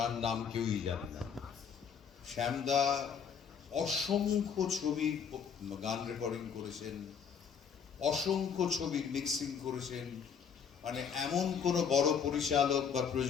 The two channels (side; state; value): right; quieter; 6.9 dB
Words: নাম কেউই জানে না। শ্যামদা অসংখ্য ছবি গান রেকর্ডিং করেছেন, অসংখ্য ছবির মিক্সিং করেছেন। মানে এমন কোনো বড় পরিচালক বা